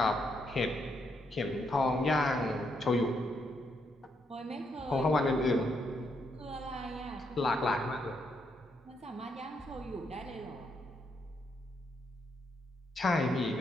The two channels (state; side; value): normal; both; correlation 0.77